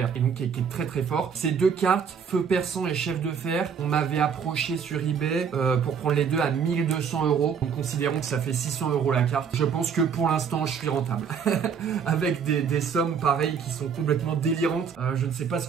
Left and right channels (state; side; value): quieter; left; 6.8 dB